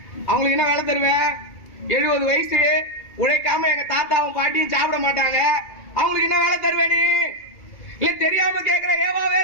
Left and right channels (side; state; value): right; late; 2.3 ms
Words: அவங்களுக்கு என்ன வேலை தருவ? 70 வயசு உழைக்காம எங்க தாத்தாவும் பாட்டியும் சாப்பிட மாட்டாங்க. அவங்களுக்கு என்ன வேலை தருவே? நீ இல்ல தெரியாம கேக்குற ஏவா